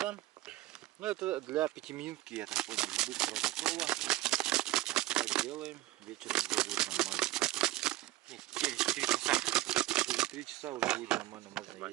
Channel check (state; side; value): quieter; left; 17.5 dB